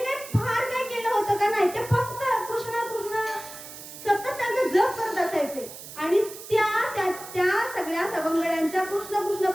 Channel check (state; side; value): noise; right; hiss, 13 dB below the sound